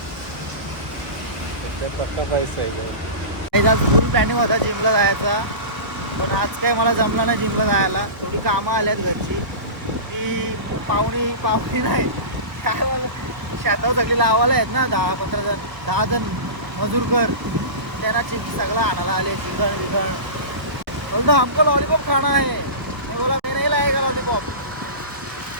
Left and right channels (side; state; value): left; late; 1.2 ms